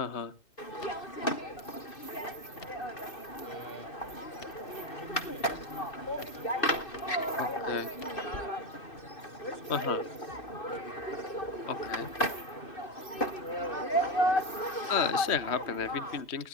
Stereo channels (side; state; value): right; late; 2.6 ms